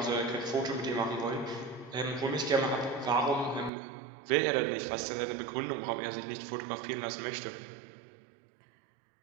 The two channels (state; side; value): drops out; left; at 3.7 s